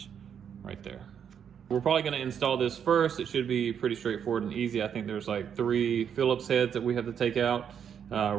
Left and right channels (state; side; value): quieter; left; 8.0 dB